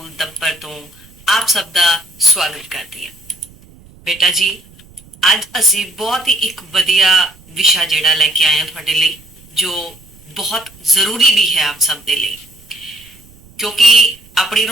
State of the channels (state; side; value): noise; right; rumble, 25 dB below the sound